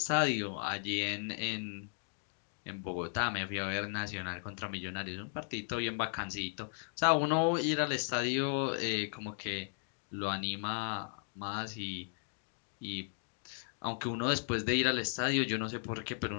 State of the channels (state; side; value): silent; right; 54 dB below the other